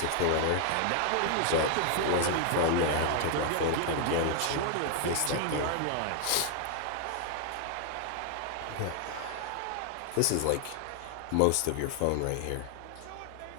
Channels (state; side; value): different; both; correlation 0.00